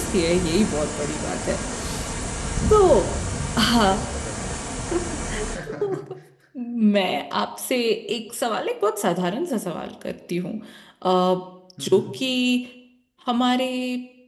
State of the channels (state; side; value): identical; both; correlation 1.00